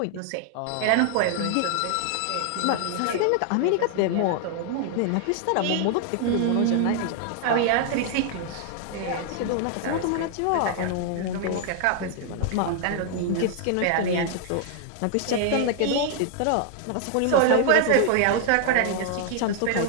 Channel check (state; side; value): different; both; correlation 0.00